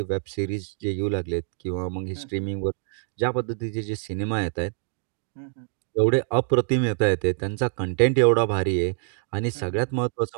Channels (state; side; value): silent; left; digital silence